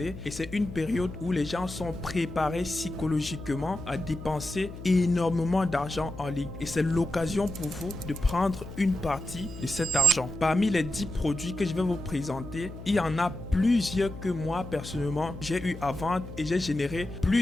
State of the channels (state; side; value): noise; left; hum, 12 dB below the sound